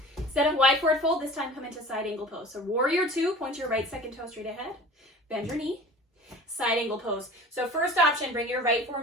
Instead of wide forward fold, this time come into side angle pose. So warrior two, point your right second toe straight ahead, bend your knee, side angle pose. So first option, bring your right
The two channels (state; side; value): normal; both; correlation 0.41